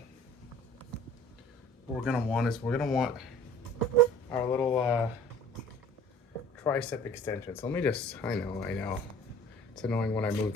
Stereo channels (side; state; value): both; normal; correlation 0.48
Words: what we're gonna want is our little tricep extension. So let me just, I know. It's annoying when I move